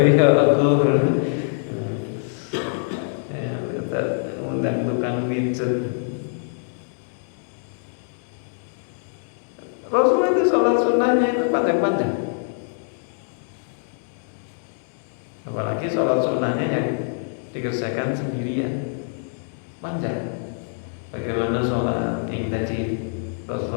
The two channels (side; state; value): right; silent; digital silence